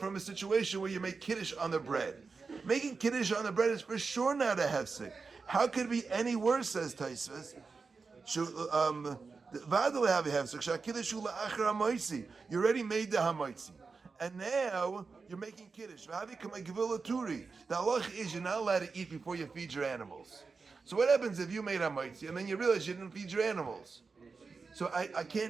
a situation where you make Kiddush on the bread. Making Kiddush on the bread is for sure not a hefsek. How could it be any worse, says Taisvus? You already made the hamaitzi. And now you're making Kiddush. The halach is you're not allowed to eat before you feed your animals. So what happens if you made hamaitzi and then you realize you didn't feed your animals? So I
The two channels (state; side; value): quieter; left; 4.6 dB